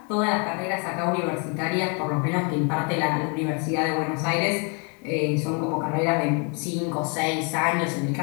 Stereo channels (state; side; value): quieter; right; 35.4 dB